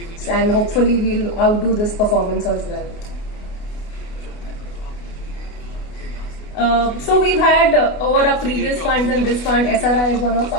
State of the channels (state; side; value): late; right; 28 ms